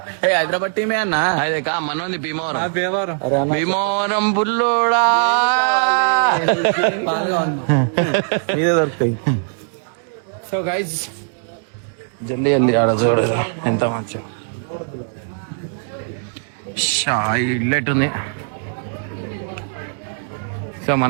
హైదరాబాద్ టీమే అన్న. అదే కా మనోంది భీమవరం బుల్లోడా దొరుకుతాయి. సో గైజ్ జల్దీ అంది ఆడ చూడు ఎంత మంచి ఇల్లు ఎట్టుంది. సో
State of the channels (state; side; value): silent; left; digital silence